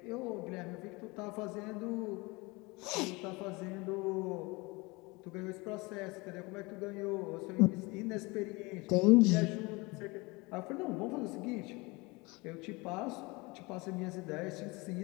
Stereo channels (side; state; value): right; quieter; 25.1 dB